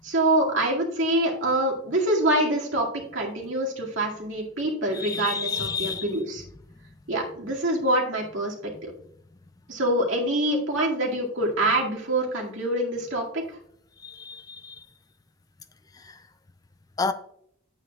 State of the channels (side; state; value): both; normal; correlation 0.01